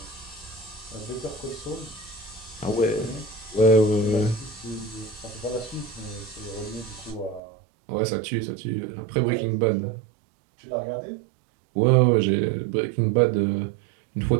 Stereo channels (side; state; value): left; drops out; at 7.4 s